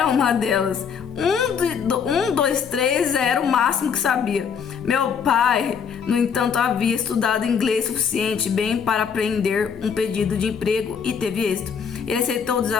uma delas. 1, 2, 3 era o máximo que sabia. Meu pai, no entanto, havia estudado inglês suficiente bem para aprender um pedido de emprego e teve êxito. Ele aceitou o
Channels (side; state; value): right; quieter; 6.8 dB